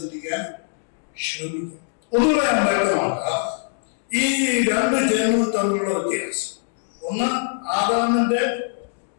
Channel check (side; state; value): right; silent; digital silence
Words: ചിന്തിക്കാൻ ശ്രമിക്കും. ഒന്നുകൂടെ ഞാൻ വ്യക്തമാക്കാം ഈ രണ്ട് ജന്മവും തമ്മിലുള്ള വ്യത്യാസം. ഒന്ന് ആദാമിൽ